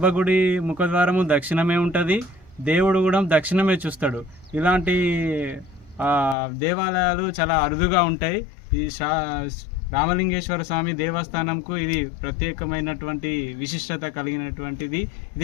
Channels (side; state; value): right; drops out; at 6.4 s